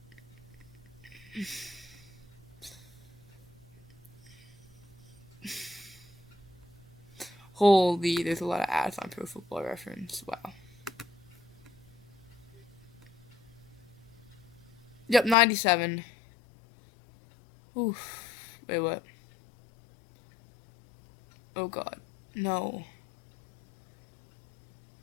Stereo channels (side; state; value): right; drops out; at 15.4 s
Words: Holy, there's a lot of ads on Pro Football Reference. Wow. Yep, 97. Oof. Wait, what? Oh god. No.